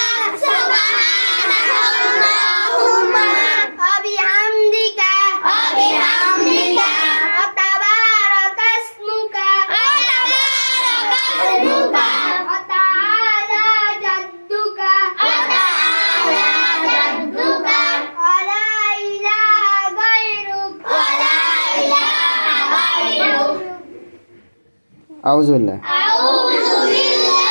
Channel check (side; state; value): both; inverted; correlation -1.00